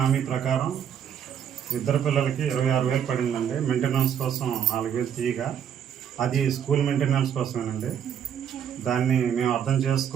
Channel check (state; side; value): quieter; left; 8.8 dB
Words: ప్రకారం ఇద్దరు పిల్లలకి 26,000 పడిందండి. మెయింటెనెన్స్ కోసం 4,000 తీయగా, అది స్కూల్ మెయింటెనెన్స్ కోసమేనండి. దాన్ని మేము అర్థం